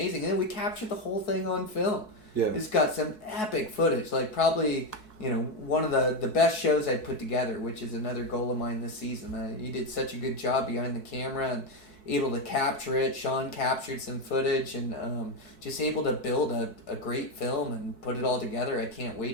And then we captured the whole thing on film. Yeah. It's got some epic footage. Like, probably, you know, one of the best shows I put together, which is another goal of mine this season. You did such a good job behind the camera and able to capture it. Sean captured some footage and just able to build a great film and put it all together. I can't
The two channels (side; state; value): right; late; 4.6 ms